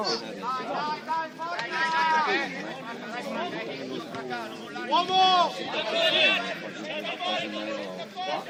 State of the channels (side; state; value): both; identical; correlation 1.00